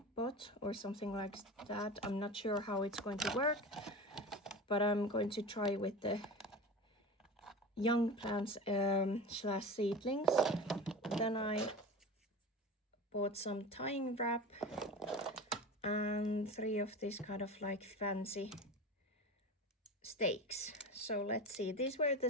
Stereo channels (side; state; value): both; normal; correlation 0.31